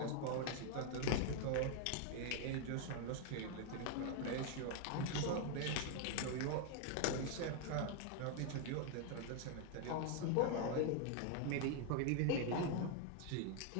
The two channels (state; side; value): different; both; correlation 0.00